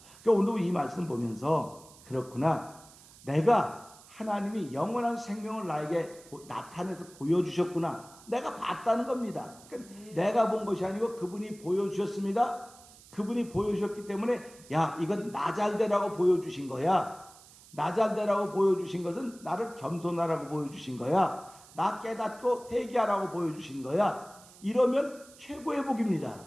그러니까 오늘 이 말씀 보면서 그렇구나. 내가 하나님이 영원한 생명을 나에게 나타내서 보여주셨구나. 내가 봤다는 겁니다. 그러니까 내가 본 것이 아니고 그분이 보여주셨습니다. 그분이 보여주셨기 때문에 야 이건 나 잘되라고 보여주신 거야. 나 잘되라고 보여주신 것은 나를 겸손하라고 보여주신 거야. 나 깨닫고 회개하라고 보여주신 거야. 이러면 최고의 복입니다.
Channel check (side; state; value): right; noise; hiss, 22 dB below the sound